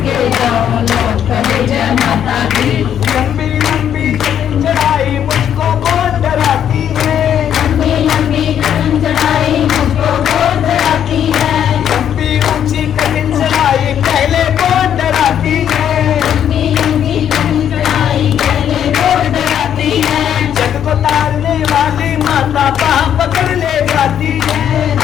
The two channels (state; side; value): quieter; right; 9.5 dB